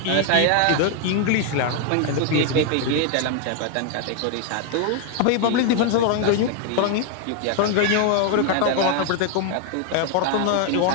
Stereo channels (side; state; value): both; different; correlation 0.00